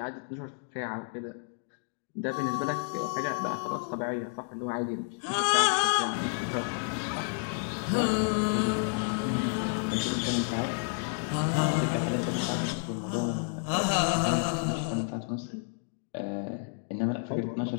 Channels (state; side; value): silent; right; 57 dB below the other